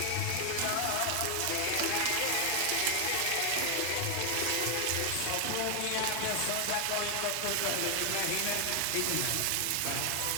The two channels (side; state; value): both; different; correlation 0.00